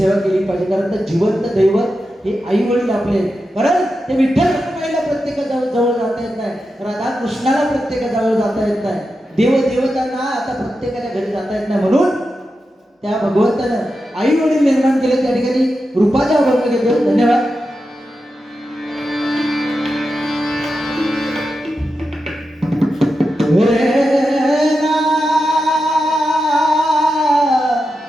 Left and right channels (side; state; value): both; normal; correlation 0.89